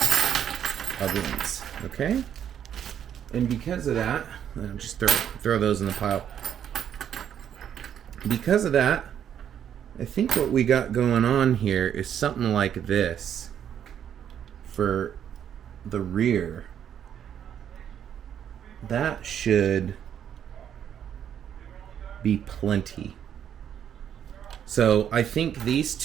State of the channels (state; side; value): quieter; left; 9.3 dB